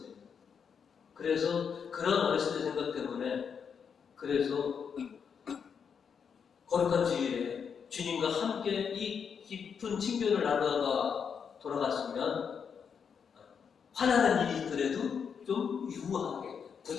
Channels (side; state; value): right; quieter; 6.8 dB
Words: 그래서 그런 어렸을 때 생각 때문에 그래서 거룩한 주일에 주님과 함께 이 깊은 친교를 나누다가 돌아갔으면 화나는 일이 있더라도 좀 유하게